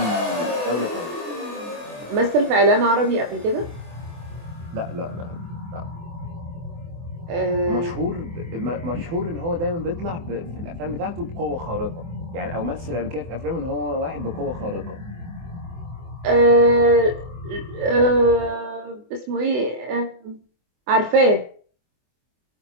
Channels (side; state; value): left; late; 24 ms